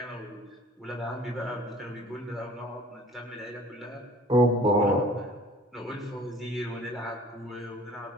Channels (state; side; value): normal; both; correlation 0.50